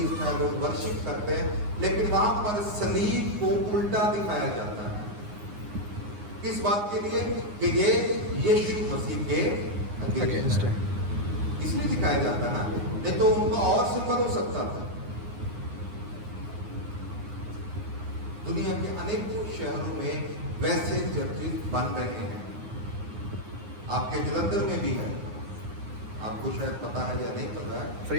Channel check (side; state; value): left; late; 9.6 ms